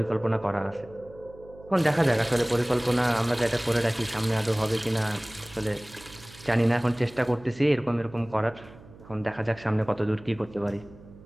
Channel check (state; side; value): noise; right; hum, 21 dB below the sound